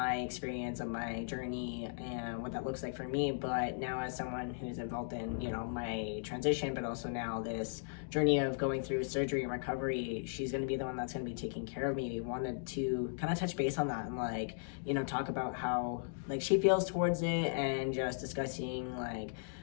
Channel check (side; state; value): right; silent; digital silence